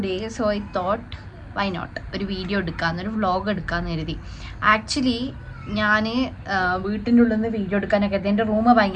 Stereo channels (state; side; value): identical; both; correlation 1.00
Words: so I thought why not ഒരു വീഡിയോ എടുക്കാമെന്ന്, ഒരു വ്ളോഗ് എടുക്കാമെന്ന് കരുതി. ആക്ച്വലി ഞാൻ വീട്ടിൻ്റെ ഉള്ളിൽ നിന്ന് വീഡിയോ എടുക്കാനൊക്കെ എൻ്റെ റൂം